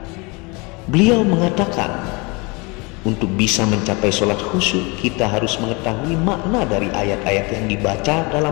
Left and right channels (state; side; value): quieter; right; 28.0 dB